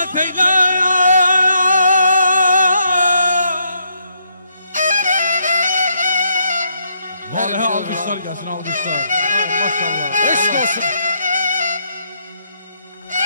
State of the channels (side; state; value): both; inverted; correlation -0.75